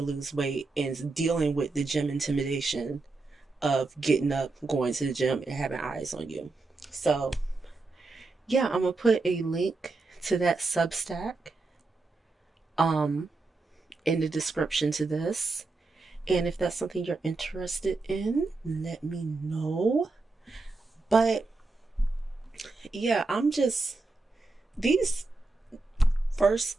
lose weight and dealing with the gym intimidation of getting up, going to the gym, and having eyes on you. So yeah, I'm gonna put a link to that Substack um in the description to this. And if that's something you're interested in, let me know. But yeah, these first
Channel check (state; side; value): quieter; left; 3.5 dB